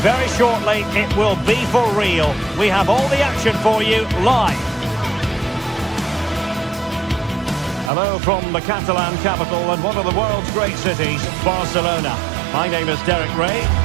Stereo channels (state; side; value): drops out; left; at 7.9 s